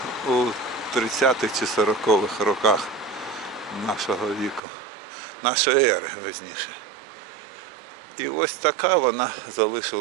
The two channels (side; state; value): left; drops out; at 4.6 s